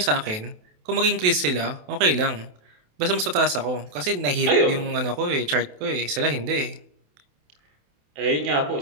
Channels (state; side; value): late; left; 28 ms